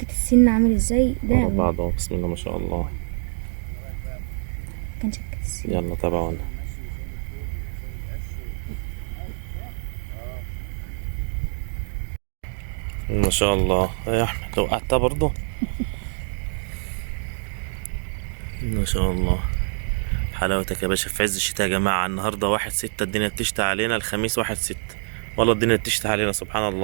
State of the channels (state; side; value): silent; left; digital silence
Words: السن عامل ازاي ده؟ ورا بعض اهو. بسم الله ما شاء الله. مكان شكة السن. يلا تابعونا. ما شاء الله يا احمد، وقعتها برضه. ما شاء الله، حلاوتك يا باشا في عز الشتاء يا جماعة. النهاردة 1/6، الدنيا بتشتي علينا. الخميس 1/6، والله الدنيا بتشتي علينا سبحان